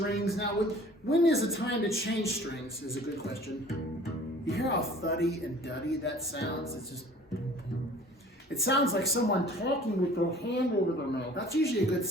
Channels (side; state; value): both; normal; correlation 0.49